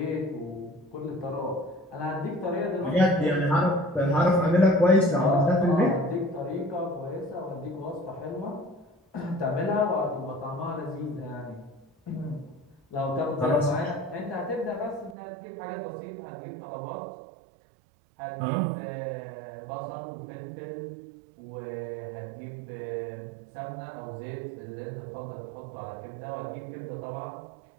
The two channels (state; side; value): drops out; left; at 15.2 s